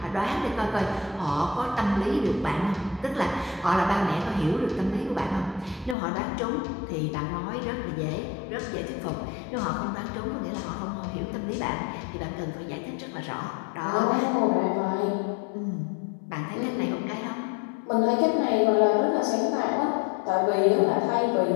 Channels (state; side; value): drops out; right; at 6.0 s